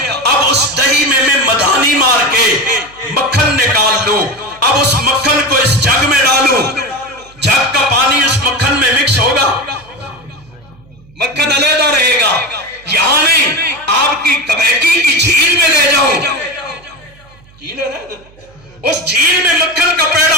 اب اس دہی میں مدھانی مار کے مکھن نکال لوں، اب اس مکھن کو اس جگ میں ڈالوں، جگ کا پانی اس مکھن میں مکس ہوگا، مکھن علیحدہ رہے گا۔ یہاں نہیں، آپ کی کمیٹی کی جھیل میں لے جاؤں، جھیل ہے نا، اس جھیل میں مکھن کا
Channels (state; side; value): noise; right; hum, 27 dB below the sound